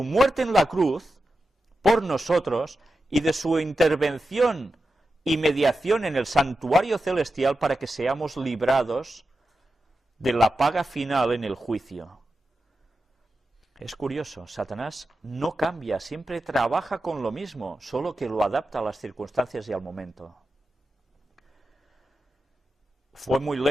muerte en la cruz por nosotros y de su intervención y mediación en el santuario celestial para que seamos librados de la paga final en el juicio. Es curioso, Satanás no cambia, siempre trabaja con lo mismo, solo que lo adapta a las circunstancias y al momento. Fue muy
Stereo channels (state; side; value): normal; both; correlation 0.90